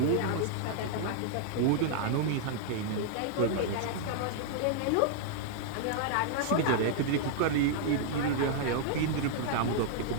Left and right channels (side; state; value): both; different; correlation -0.01